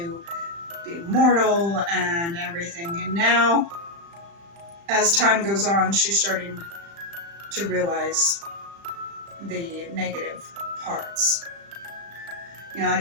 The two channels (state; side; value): late; left; 35 ms